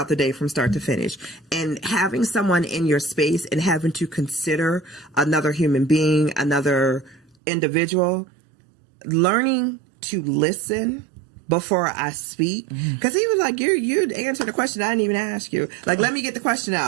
the day from start to finish. And having someone in your space and having to consider another human being, another individual, learning to listen before I speak, because he was like, you answered the question I didn't even ask you. Like, let me get the question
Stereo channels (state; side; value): drops out; left; at 7.4 s